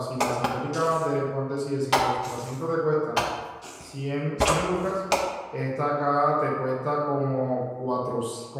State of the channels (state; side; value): identical; both; correlation 1.00